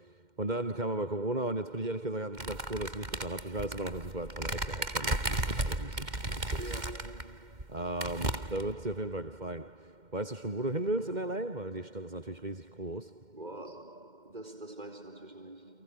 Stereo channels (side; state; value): left; late; 2.1 ms